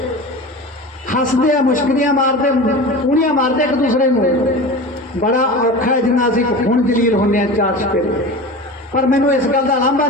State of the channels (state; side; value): normal; both; correlation 0.31